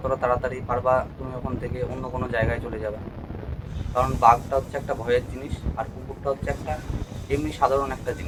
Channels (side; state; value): both; identical; correlation 1.00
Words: তাড়াতাড়ি পারবা তুমি ওখান থেকে অন্য কোনো জায়গায় চলে যাবে। কারণ বাঘটা হচ্ছে একটা ভয়ের জিনিস, আর কুকুরটা হচ্ছে একটা এমনি সাধারণ একটা